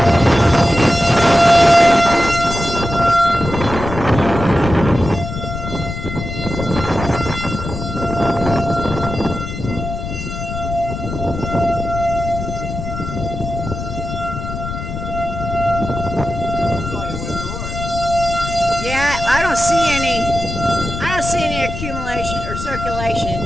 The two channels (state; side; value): noise; left; rumble, 7 dB below the sound